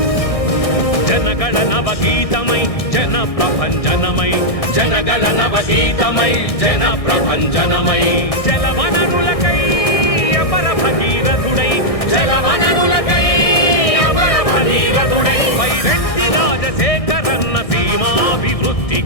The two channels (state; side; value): late; right; 1.6 ms